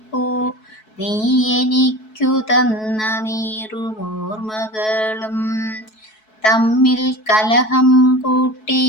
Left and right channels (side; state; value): right; late; 4.6 ms